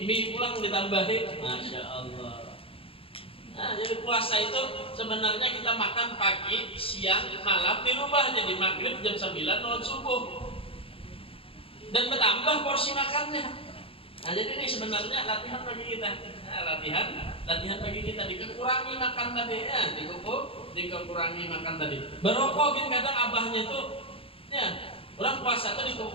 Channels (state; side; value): late; right; 0.27 ms